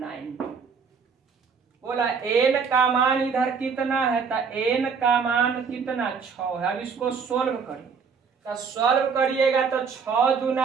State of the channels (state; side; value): quieter; left; 5.8 dB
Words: बोला n का मान इधर कितना है, तो n का मान कितना 6 है। अब इसको सोल्व करिए, तो सोल्व करिएगा तो 6